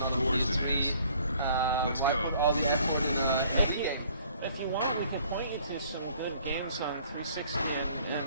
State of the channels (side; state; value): both; inverted; correlation -0.58